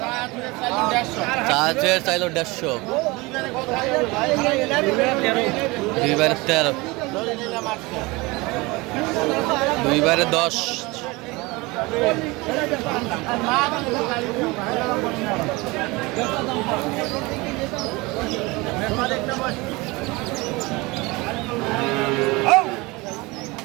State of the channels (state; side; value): quieter; left; 23.7 dB